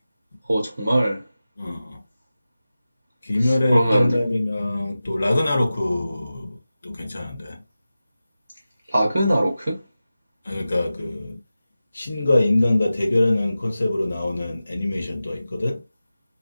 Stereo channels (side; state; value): both; inverted; correlation -0.95